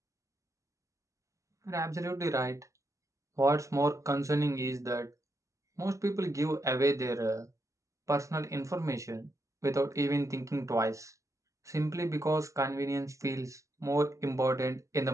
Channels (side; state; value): left; late; 0.15 ms